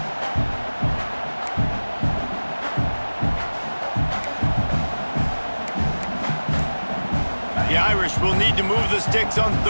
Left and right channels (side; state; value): both; inverted; correlation -1.00